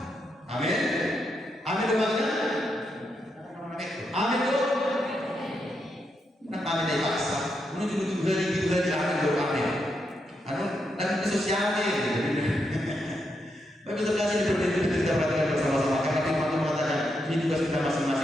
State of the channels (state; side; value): normal; both; correlation 0.82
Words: Amin. Amin dengannya. Amin dong. Nak amin dari paksa. Menuju tujuh hari amin dong amin. Anu dan sosialnya. Baik terkasih diperhatikan kita perhatikan bersama-sama karena firman Tuhan mengatakan ini tugas kita